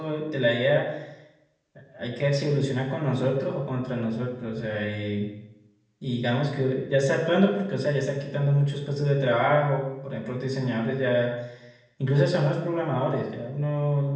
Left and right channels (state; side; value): identical; both; correlation 1.00